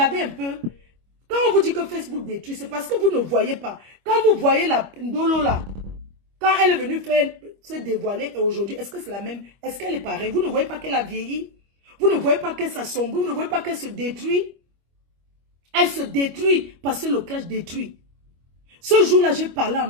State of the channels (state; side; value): late; left; 25 ms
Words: un peu. Quand on vous dit que Facebook détruit, c'est parce que vous ne voyez pas. Quand vous voyez la Ndolo là, quand elle est venue se dévoiler aujourd'hui, est-ce que c'est la même? Est-ce qu'elle est pareille? Vous ne voyez pas qu'elle a vieilli? Vous ne voyez pas qu'elle s'assombrit? Vous ne voyez pas qu'elle se détruit? Elle se détruit parce que le clash détruit. Ce jour-là, j'ai parlé à